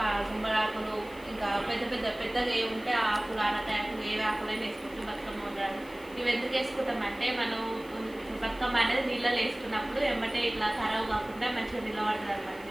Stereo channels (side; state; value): left; noise; hiss, 23 dB below the sound